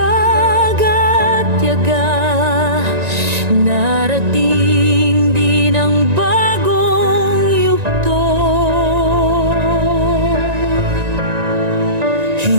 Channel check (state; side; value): late; left; 1.9 ms